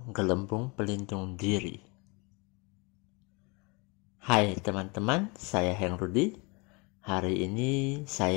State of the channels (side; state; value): right; quieter; 29.3 dB